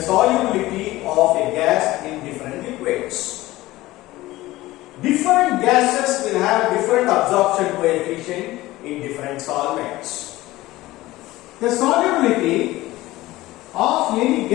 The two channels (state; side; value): quieter; right; 17.8 dB